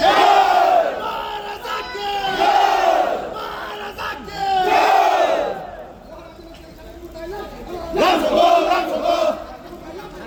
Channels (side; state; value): both; identical; correlation 1.00